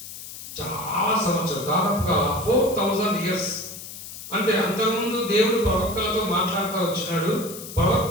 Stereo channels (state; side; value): noise; left; hiss, 12 dB below the sound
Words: చాలా సంవత్సరాలు, దాదాపుగా 4000 years అంటే అంతకుముందు దేవుడు ప్రవక్తలతో మాట్లాడుతూ వచ్చినాడు,